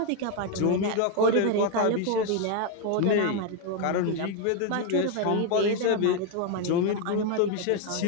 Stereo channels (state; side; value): different; both; correlation 0.01